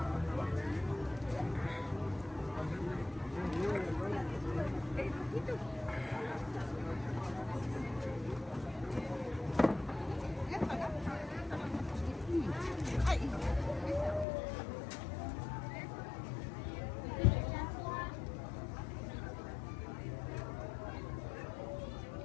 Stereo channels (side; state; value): right; drops out; at 14.2 s